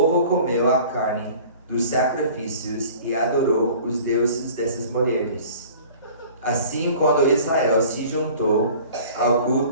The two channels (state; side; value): inverted; both; correlation -0.46